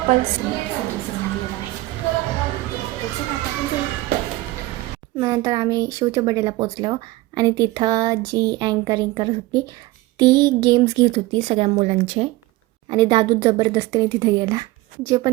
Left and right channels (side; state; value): left; quieter; 19.1 dB